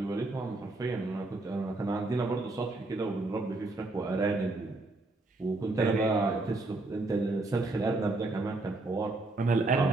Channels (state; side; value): quieter; left; 3.0 dB